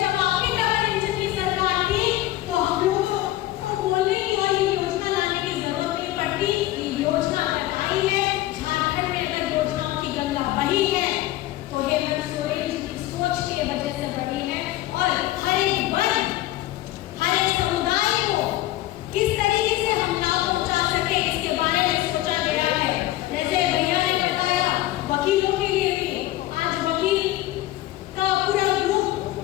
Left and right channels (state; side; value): quieter; right; 15.9 dB